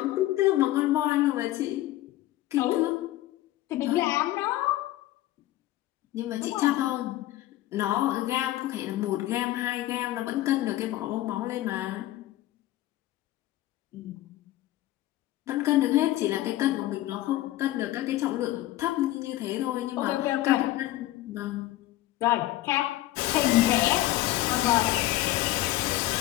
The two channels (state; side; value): quieter; right; 15.7 dB